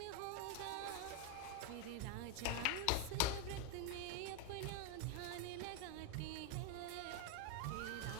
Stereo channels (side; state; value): both; different; correlation 0.02